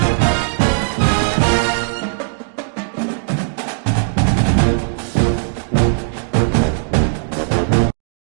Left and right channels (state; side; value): silent; left; digital silence